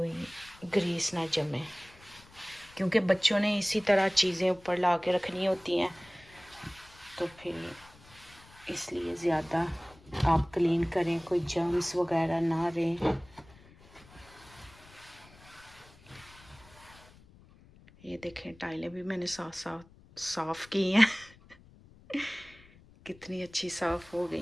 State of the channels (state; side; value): noise; left; rumble, 24 dB below the sound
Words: ग्रीस ना जमे, क्योंकि बच्चों ने इसी तरह चीज़ें ऊपर ला के रखनी होती हैं, तो फिर इसलिए ज़्यादा आप क्लीन करें, कोई जर्म्स वगैरह ना रहें। ये देखें टाइलें भी मैंने साफ की हैं कितनी अच्छी साफ हो गई